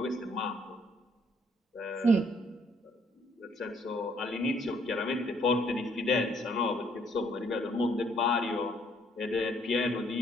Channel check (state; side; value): normal; both; correlation 0.66